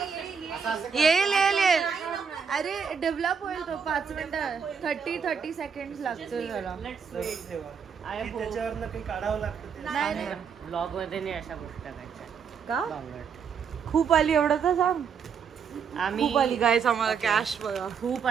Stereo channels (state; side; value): quieter; left; 6.6 dB